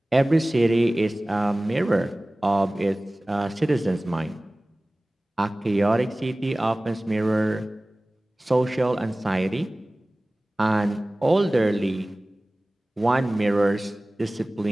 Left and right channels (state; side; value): normal; both; correlation 0.98